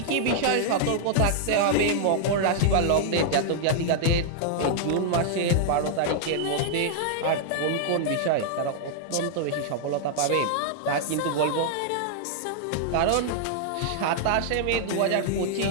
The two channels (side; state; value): both; different; correlation -0.01